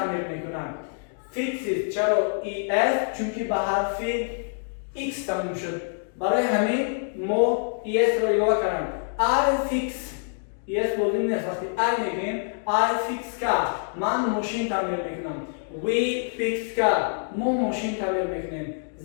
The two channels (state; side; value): silent; right; digital silence